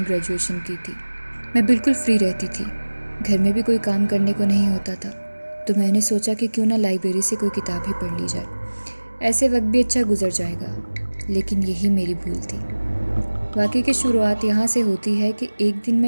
ग्रेजुएशन की थी। मैं बिल्कुल फ्री रहती थी, घर में भी कोई काम करने को नहीं होता था, तो मैंने सोचा कि क्यों ना लाइब्रेरी से कोई किताब ही पढ़ ली जाए, ऐसे वक्त भी अच्छा गुजर जाएगा। लेकिन यही मेरी भूल थी। वाक़ई की शुरुआत यहाँ से होती है कि एक दिन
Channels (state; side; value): inverted; both; correlation -1.00